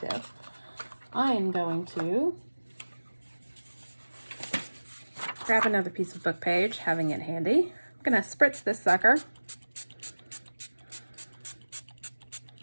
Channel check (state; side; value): inverted; both; correlation -1.00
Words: I am going to grab another piece of book page, having it handy. I'm gonna spritz this sucker.